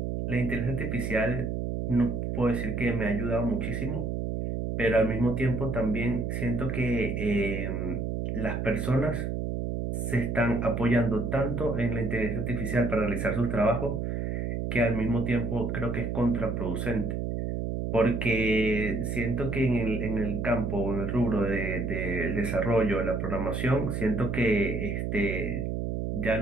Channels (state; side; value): noise; right; hum, 2 dB below the sound